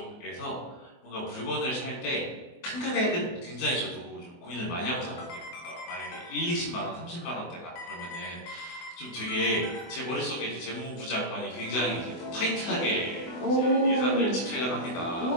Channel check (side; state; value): right; late; 24 ms